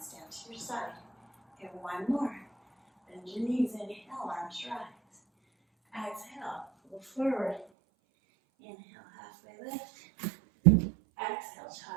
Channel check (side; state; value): left; drops out; at 7.7 s